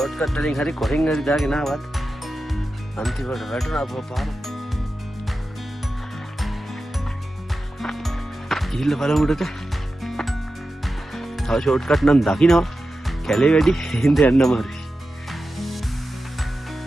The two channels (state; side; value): normal; both; correlation 0.92